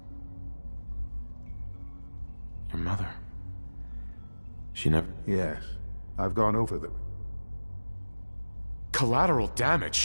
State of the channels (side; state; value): both; inverted; correlation -1.00